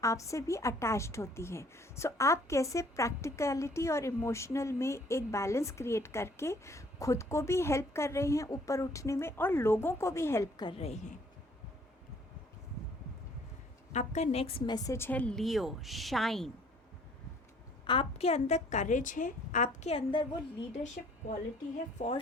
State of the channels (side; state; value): both; normal; correlation 0.59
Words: आपसे भी अटैच्ड होती है। सो आप कैसे प्रैक्टिकलिटी और इमोशनल में एक बैलेंस क्रिएट करके खुद को भी हेल्प कर रहे हैं ऊपर उठने में और लोगों को भी हेल्प कर रहे हैं। आपका नेक्स्ट मैसेज है लियो, शाइन। आपके अंदर करेज है, आपके अंदर वो लीडरशिप क्वालिटी है फॉर